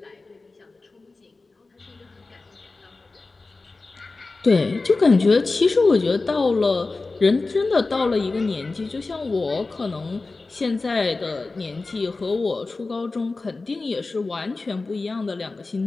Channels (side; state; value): right; quieter; 3.6 dB